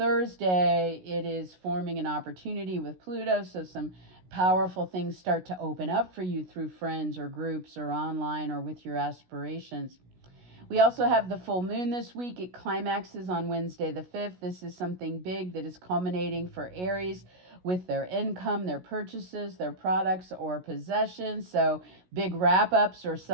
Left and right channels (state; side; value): late; left; 16 ms